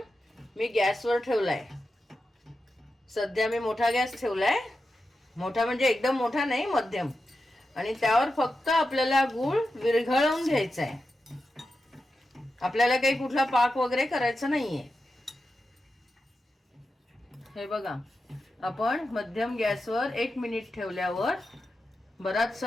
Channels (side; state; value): both; normal; correlation 0.90